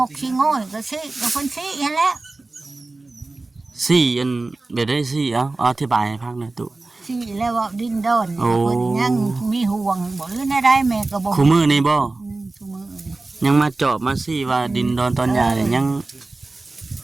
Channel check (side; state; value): left; quieter; 3.3 dB